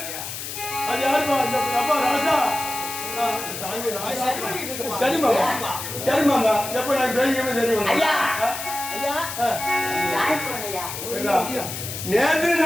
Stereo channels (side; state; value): left; noise; hiss, 7 dB below the sound